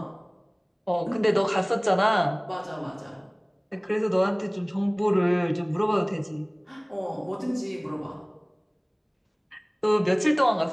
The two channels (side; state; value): both; identical; correlation 1.00